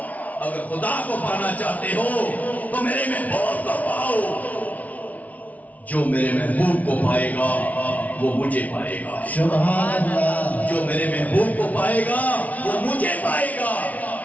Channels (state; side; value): late; right; 0.071 ms